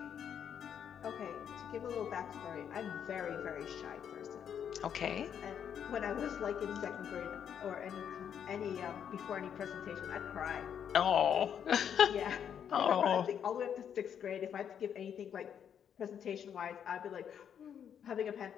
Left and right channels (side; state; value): right; quieter; 8.5 dB